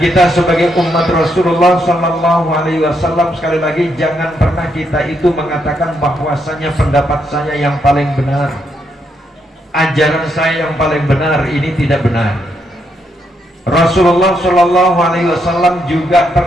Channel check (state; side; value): normal; both; correlation 0.78